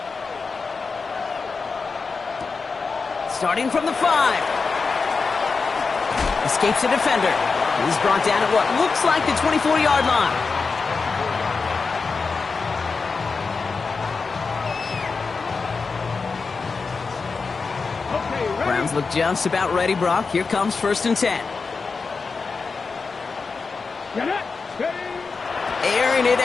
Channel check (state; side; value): quieter; right; 4.6 dB